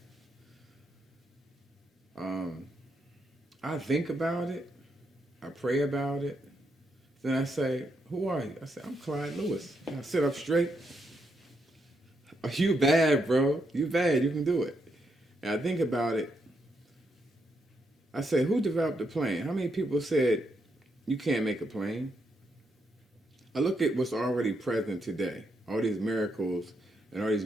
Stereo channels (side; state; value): both; normal; correlation 0.80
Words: Um, I think about it. I pray about it. Then I say, "Who are you?" I say, "I'm Clyde Lewis." And I sit up straight. Oh, you bad, bro. You bad. You can do it. And I think about it. I say, "Who developed the plane? How many people said you can't make a plane?" I look at what's already present today. All these miracles and all these